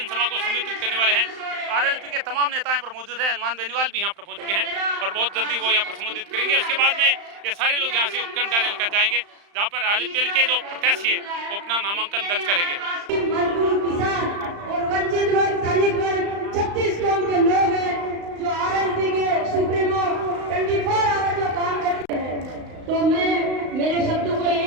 को संबोधित करने वाले हैं। आरएलपी के तमाम नेता यहाँ पर मौजूद हैं। हनुमान बेनीवाल भी यहाँ पर पहुंच चुके हैं और बहुत जल्दी वो यहाँ पर संबोधित करेंगे। उसके बाद में ये सारे लोग यहाँ से उपखंड कार्यालय कर जाएंगे जहाँ पर आरएलपी के जो प्रत्याशी है वो अपना नामांकन दर्ज करेंगे। मजदूर, किसान और वंचित वर्ग, दलित वर्ग 36 कौम के लोग हैं जो आरएलपी के सुप्रीमो 24 आवर जो काम करते हैं। तो मैं मेरे शब्दों को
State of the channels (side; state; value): left; late; 35 ms